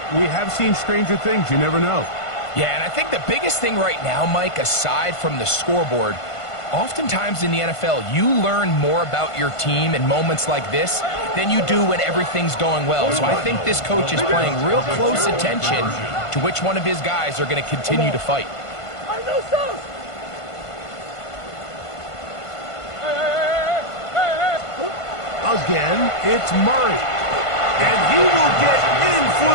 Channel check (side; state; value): right; late; 1.5 ms